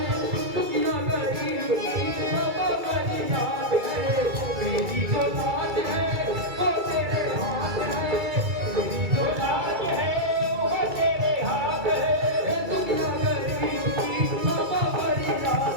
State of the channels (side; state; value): left; late; 2.3 ms